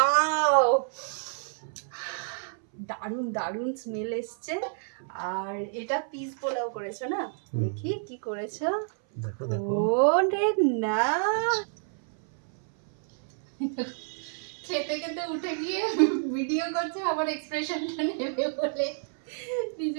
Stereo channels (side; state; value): left; silent; 59 dB below the other